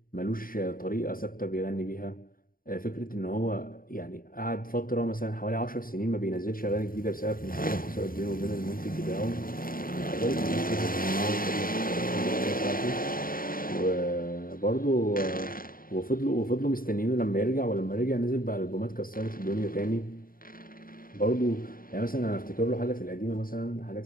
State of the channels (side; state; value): right; late; 0.41 ms